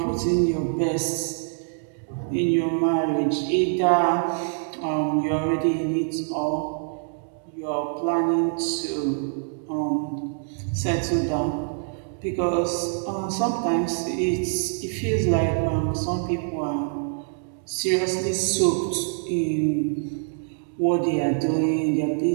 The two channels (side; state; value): left; silent; digital silence